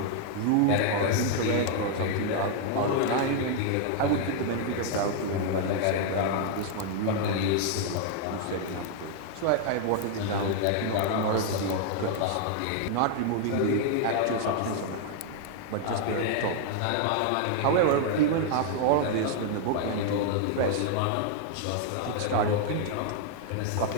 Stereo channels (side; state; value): both; different; correlation 0.00